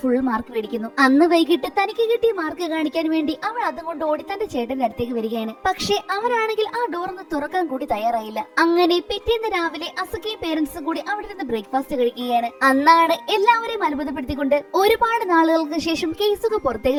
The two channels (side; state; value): both; identical; correlation 1.00